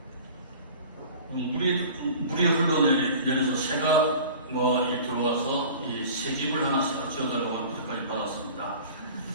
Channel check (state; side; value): inverted; both; correlation -0.41